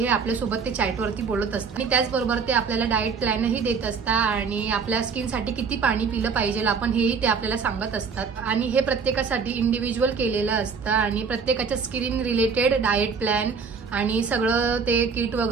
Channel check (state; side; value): quieter; left; 5.5 dB